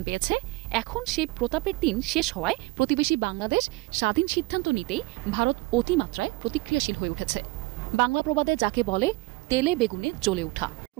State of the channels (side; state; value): left; quieter; 23.2 dB